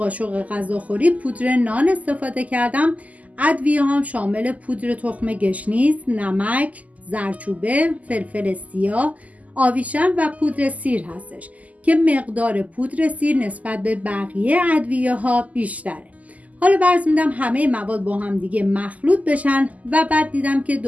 غذاخوری پودر نان استفاده کردم. ادویه هم شامل پودر تخم گشنیز، نمک، زردچوبه، فلفل سیاه، آویشن و پودر سیر هستش که مقدار پودر سیر نسبت به بقیه ادویه ها بیشتره. حالا فرض میدم همه مواد با هم دیگه مخلوط بشن و بعد دیدم که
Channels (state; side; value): late; left; 0.075 ms